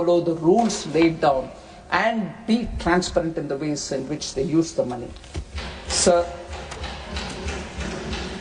the rules laid down and be transparent in the ways in which they use the money. Sir,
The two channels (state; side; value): identical; both; correlation 1.00